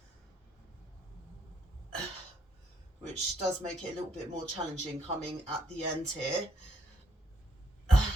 Which does make it a little bit more challenging coming at the end here.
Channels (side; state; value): both; normal; correlation 0.72